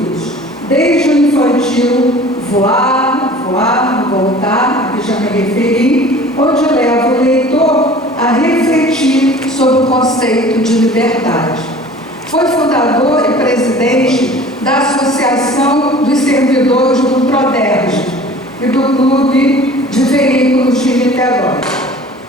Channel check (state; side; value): normal; both; correlation 0.45